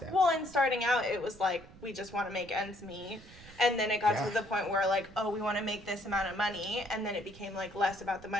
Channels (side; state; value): right; noise; rumble, 20 dB below the sound